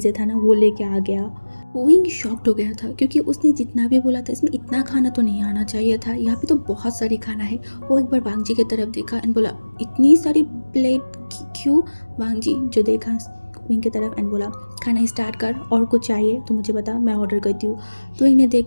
था ना वो लेके आ गया। विंग शॉक्ड हो गया था क्योंकि उसने जितना भी बोला था इसमें इतना खाना तो नहीं आना चाहिए था, यहाँ पे तो बहुत सारी खाना है। वो एक बार वांग जी की तरफ देखा एंड बोला इतनी सारी प्लेट क्यों। वांग जी जो देखा विंग की तरफ एंड बोला खाना स्टार्ट कर, और कुछ चाहिए तो मुझे बता मैं ऑर्डर करती हूँ। तो विंग ने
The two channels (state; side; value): inverted; both; correlation -1.00